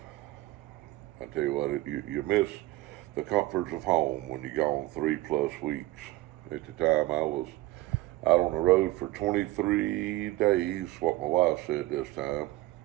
I tell you what, you miss the comforts of home when you're gone 3+ weeks. At the time, I was out on the road for 23 days. What my wife said this time.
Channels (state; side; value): quieter; left; 18.3 dB